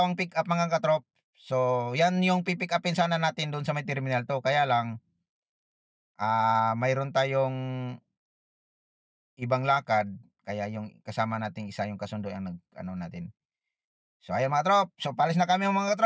pick up mga katrop. So, yan yung pipick upin sana natin doon sa may Terminal 2. Kaya lang, mayroon tayong ibang lakad. Kaya yung kasama nating isa yung kasundo ang ano natin. So, ayan mga trop. So, palis na kami mga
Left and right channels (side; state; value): both; identical; correlation 1.00